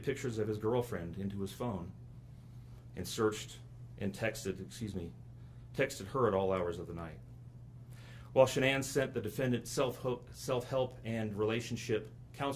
pictures of his girlfriend into his phone and searched and texted her at all hours of the night. While Shanann sent the defendant self-help and relationship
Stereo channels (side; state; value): both; identical; correlation 1.00